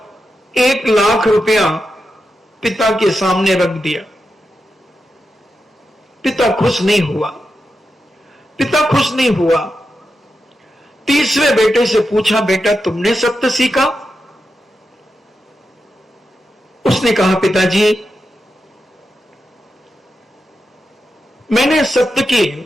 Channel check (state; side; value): normal; both; correlation 0.88